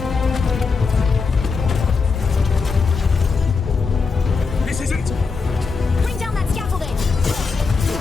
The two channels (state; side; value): quieter; right; 4.7 dB